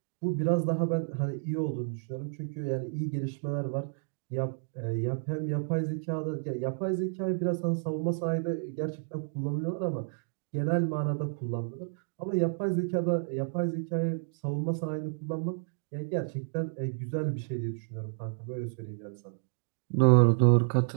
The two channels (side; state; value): left; silent; digital silence